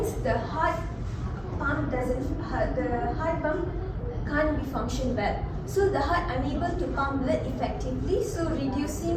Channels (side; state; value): both; identical; correlation 1.00